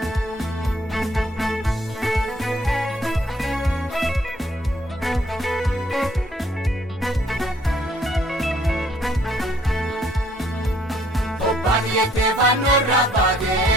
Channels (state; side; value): normal; both; correlation 0.63